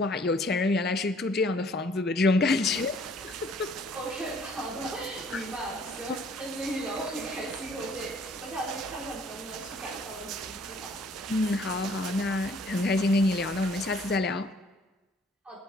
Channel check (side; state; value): both; normal; correlation 0.59